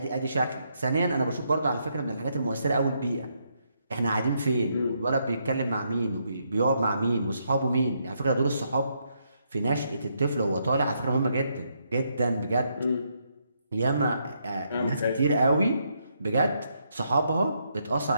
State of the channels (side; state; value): both; inverted; correlation -0.77